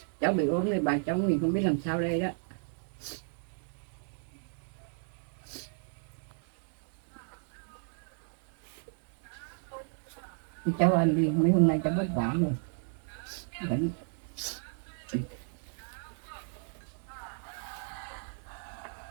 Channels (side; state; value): left; silent; digital silence